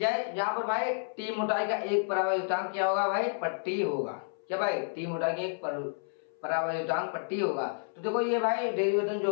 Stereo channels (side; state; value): right; silent; 57 dB below the other